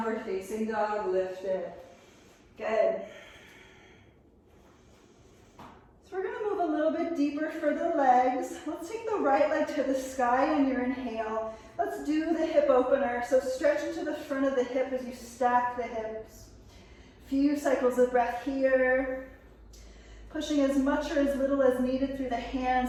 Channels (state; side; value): identical; both; correlation 1.00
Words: facing dog, lift it. Good. So we're going to move a little bit deeper for the legs. Let's take the right leg to the sky on your inhale. Let's do the hip opener. So stretch into the front of the hip as you stack the hips. Few cycles of breath here. Pushing as much or as little as needed through the